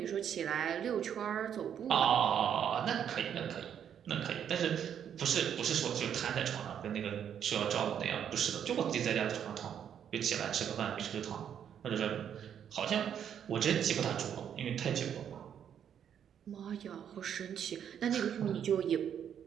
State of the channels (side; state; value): left; quieter; 8.8 dB